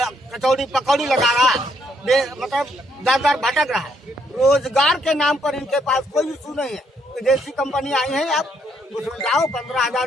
कचौड़ी पकौड़ी लगा रहा है, मतलब दर भटक रहा है। रोजगार के नाम पर इनके पास कोई इशू नहीं है। विदेशी कंपनी आई है, आप उसमें जाओ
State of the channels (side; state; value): both; normal; correlation 0.72